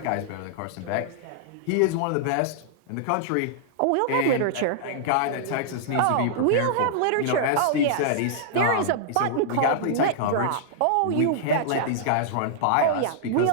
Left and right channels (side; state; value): both; different; correlation -0.01